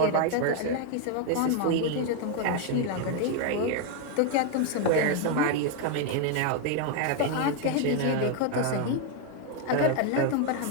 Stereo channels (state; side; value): different; both; correlation 0.01